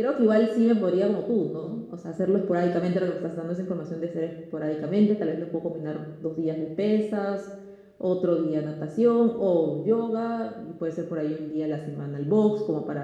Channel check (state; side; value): identical; both; correlation 1.00